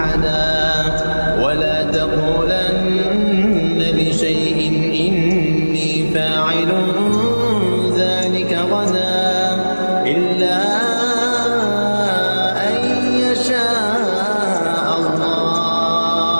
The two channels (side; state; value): both; inverted; correlation -1.00